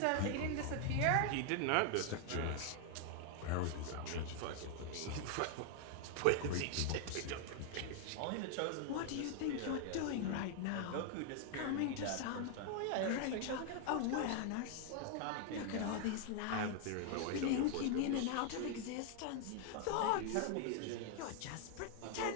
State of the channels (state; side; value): different; both; correlation 0.00